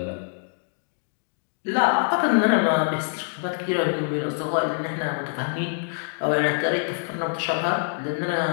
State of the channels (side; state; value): right; silent; digital silence